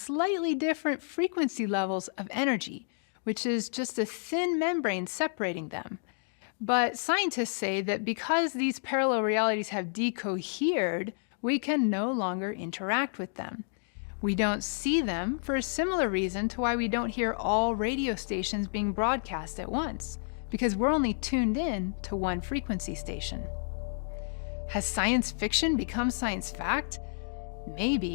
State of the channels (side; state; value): right; silent; digital silence